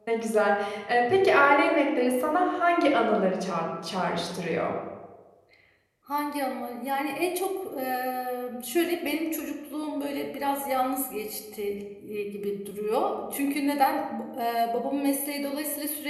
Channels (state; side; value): identical; both; correlation 1.00